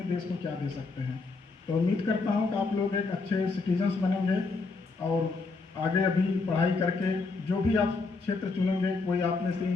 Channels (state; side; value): quieter; right; 3.9 dB